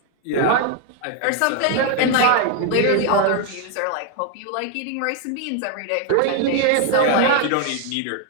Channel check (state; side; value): different; both; correlation 0.01